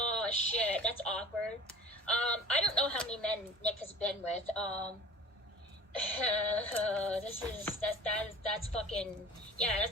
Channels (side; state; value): both; normal; correlation 0.42